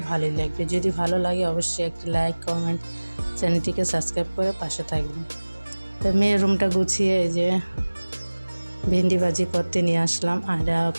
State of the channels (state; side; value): inverted; both; correlation -1.00